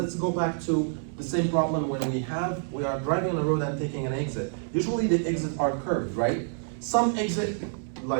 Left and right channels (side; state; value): left; silent; 60 dB below the other